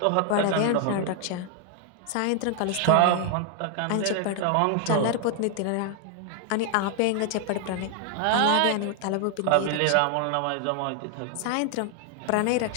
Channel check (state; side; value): different; both; correlation 0.00